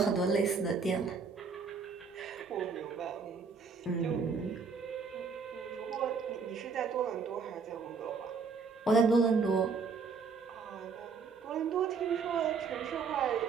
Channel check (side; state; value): left; quieter; 5.2 dB